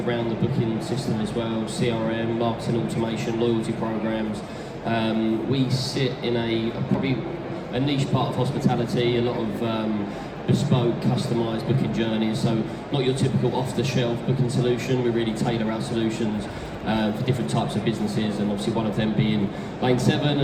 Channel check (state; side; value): identical; both; correlation 1.00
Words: the booking system as well: CRM, marketing automation, loyalty programs. We sit in probably a niche part of hospitality. A lot of bespoke, customised booking journeys, so not your typical off-the-shelf booking solution. We really tailor our solutions for different types of businesses, and obviously one of them being Lane 7